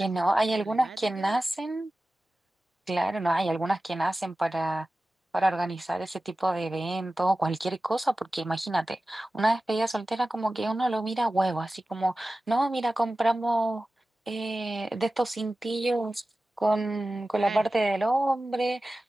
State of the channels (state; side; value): normal; both; correlation 0.95